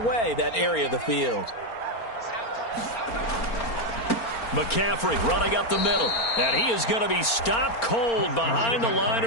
that area of the field. McCaffrey running up the middle, and he is going to be stopped cold behind the line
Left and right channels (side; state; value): right; late; 4.4 ms